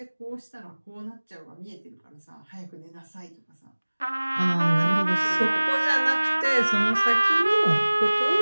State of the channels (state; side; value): inverted; both; correlation -1.00